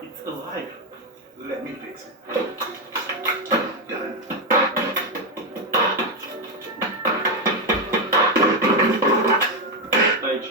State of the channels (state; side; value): normal; both; correlation 0.06